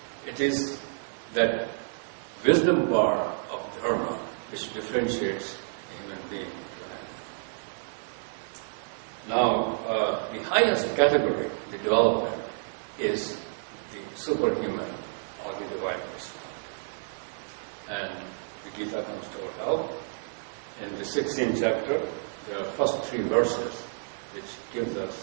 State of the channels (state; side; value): silent; left; digital silence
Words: It is that wisdom bar of dharma which differentiates a human being to an animal. Now, the highest category, the development, is the superhuman or the divine personality. And the Gita comes to our help. In the 16th chapter, there are first 3 verses which gives